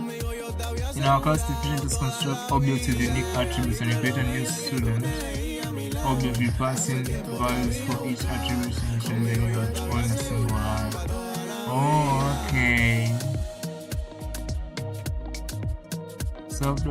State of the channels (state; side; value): identical; both; correlation 1.00